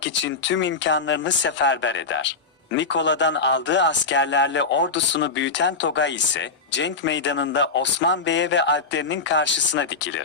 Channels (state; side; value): quieter; right; 4.3 dB